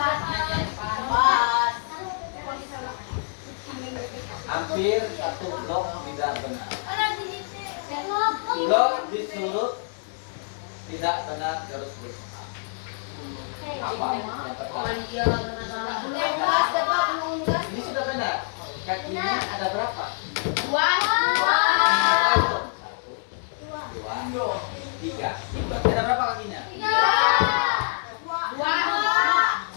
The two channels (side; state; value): right; silent; digital silence